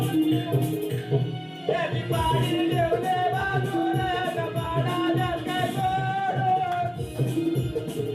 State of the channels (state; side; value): identical; both; correlation 1.00